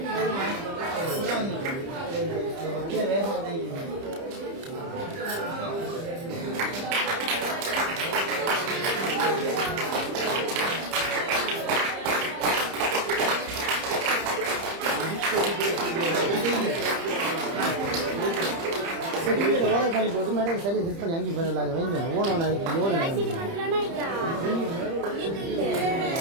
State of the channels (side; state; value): left; late; 30 ms